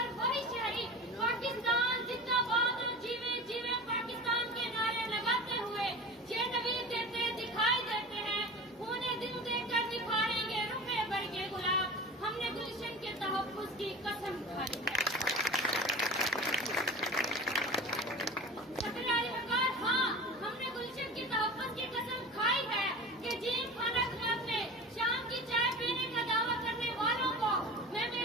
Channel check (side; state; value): both; normal; correlation 0.33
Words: وہی شہری پاکستان زندہ باد اور جیوے جیوے پاکستان کے نعرے لگاتے ہوئے یہ نوید دیتے دکھائی دیتے ہیں. انہیں دل دے کر نکھاریں گے رخے بھر کے گلاب. ہم نے گلشن کے تحفظ کی قسم کھائی ہے. سکراری وقار ہاں ہم نے گلشن کی تحفظ کی قسم کھائی ہے کہ جیم خانہ کلب میں شام کی چائے پینے کا دعویٰ کرنے والوں کو میں